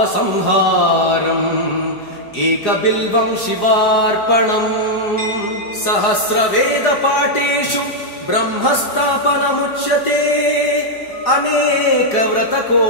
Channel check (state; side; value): late; right; 4.9 ms